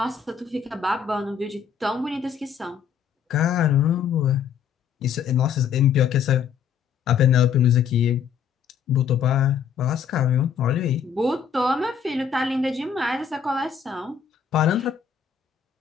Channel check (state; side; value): quieter; right; 7.3 dB